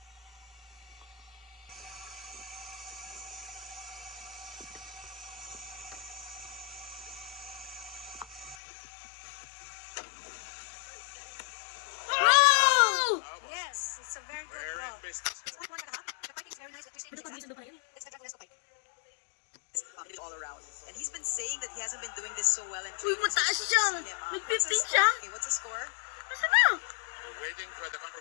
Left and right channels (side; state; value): right; drops out; at 8.6 s